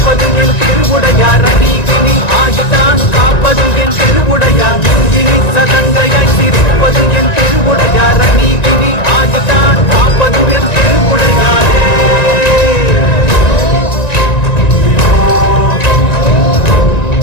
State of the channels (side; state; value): right; late; 1.9 ms